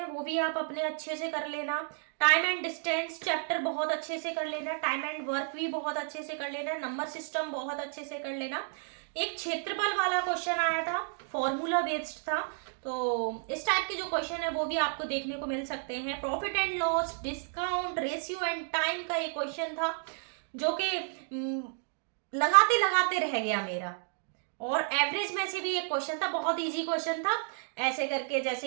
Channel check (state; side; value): silent; left; 57 dB below the other